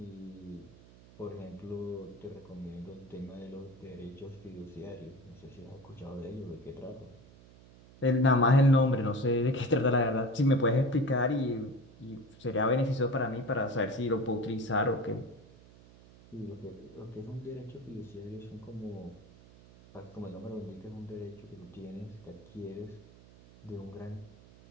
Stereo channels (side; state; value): right; noise; hum, 22 dB below the sound